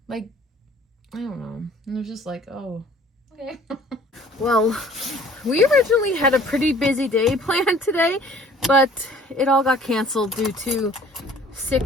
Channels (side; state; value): both; normal; correlation 0.52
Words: Like, I don't know. And it was just like, oh, okay. Well, we originally had a pretty busy day planned today, but it all got canceled due to